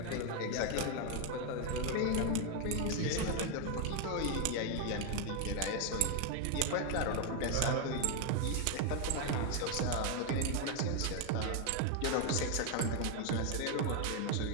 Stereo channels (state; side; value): different; both; correlation 0.01